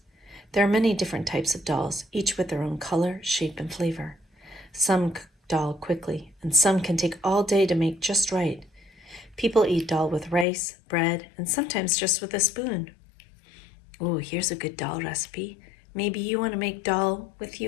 There are many different types of dals, each with their own color, shape, and flavor. Some cook dal quickly, and some can take all day to make just right. People eat dal with rice, bread, and sometimes just with a spoon. Oh, here's a good dal recipe. Maybe you want to make dal with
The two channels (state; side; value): drops out; right; at 10.5 s